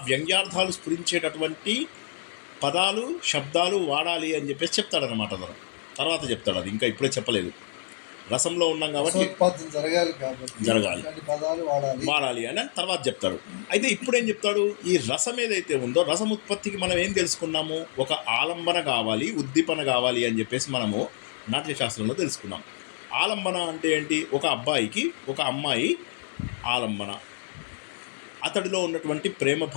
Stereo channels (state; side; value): silent; right; 60 dB below the other